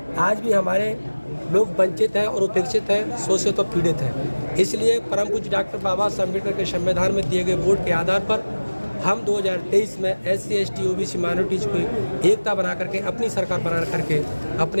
आज भी हमारे लोग वंचित हैं और उपेक्षित हैं, शोषित और पीड़ित हैं। इसलिए परम पूज्य डॉक्टर बाबा साहब अम्बेडकर के संविधान में दिए गए वोट के आधार पर हम 2023 में SC, ST, OBC माइनॉरिटीज को एकता बना करके अपनी सरकार बना करके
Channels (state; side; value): inverted; both; correlation -1.00